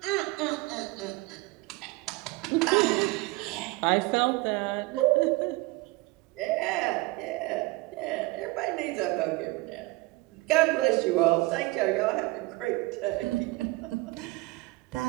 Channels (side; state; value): left; quieter; 21.8 dB